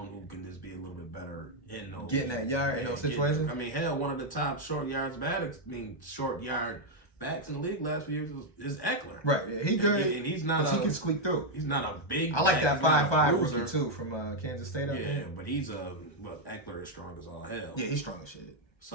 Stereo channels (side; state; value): right; late; 1.3 ms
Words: who can just be a little bit better in those getting that yard in those situations. I mean, hell, one of the top short yard backs in the league last few years is Eckler. Right, yeah, he good. And he's not. He can squeak through. He's not a big. I like that 5'5" rookie too from Kansas State. Yeah, but Eckler is strong as all hell. Yeah, he's strong as shit.